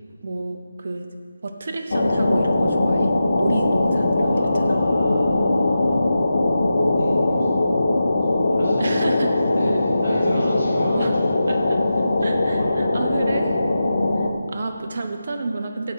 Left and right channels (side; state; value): both; inverted; correlation -0.91